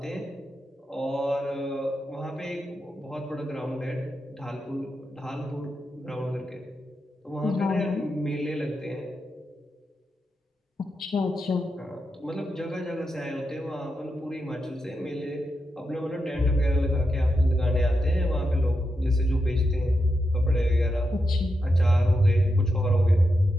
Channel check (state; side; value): normal; both; correlation 0.87